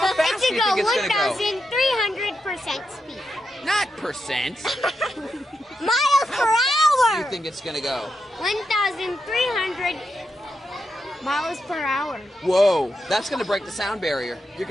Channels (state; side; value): normal; both; correlation 0.86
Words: fast It do should you go think it's going to go? 1,300% speed. Not percent. miles per Do hour. you think it's going to go? 1,300 miles per hour. Whoa, that's going to break the sound barrier. You're